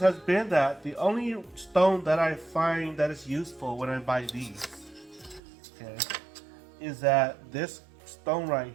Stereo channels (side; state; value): left; drops out; at 5.4 s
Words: has been that the only stone that I find that is useful when I buy these, okay, is that this stone right